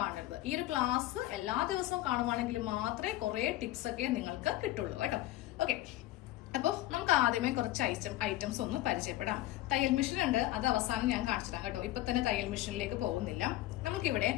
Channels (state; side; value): quieter; right; 15.9 dB